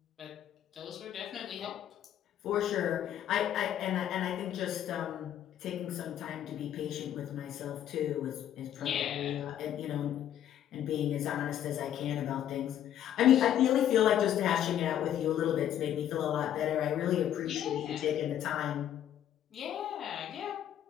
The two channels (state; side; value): quieter; right; 10.7 dB